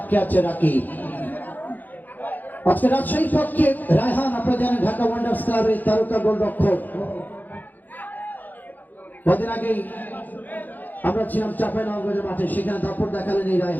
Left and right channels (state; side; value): late; right; 0.084 ms